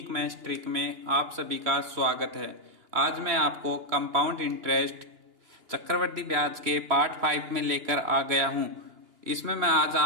maths trick में आप सभी का स्वागत है। आज मैं आपको कंपाउंड इंटरेस्ट चक्रवृद्धि ब्याज के पार्ट 5 में लेकर आ गया हूं। इसमें मैं आज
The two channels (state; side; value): late; left; 2.9 ms